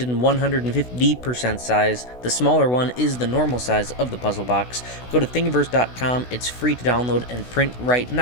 in 150% size. The smaller one is the normal size of the puzzle box. Go to Thingiverse.com, it's free to download and print right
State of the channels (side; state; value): right; late; 16 ms